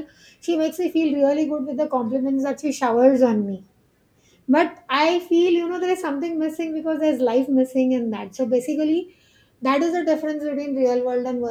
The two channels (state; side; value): identical; both; correlation 1.00